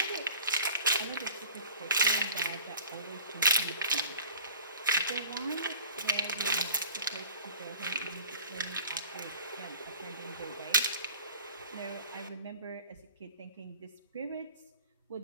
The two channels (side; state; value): both; inverted; correlation -0.44